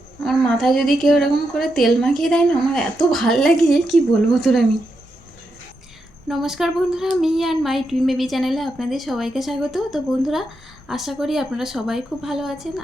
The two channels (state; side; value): normal; both; correlation 0.84